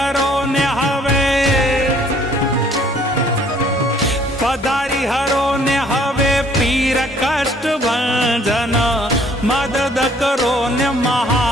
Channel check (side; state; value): both; normal; correlation 0.60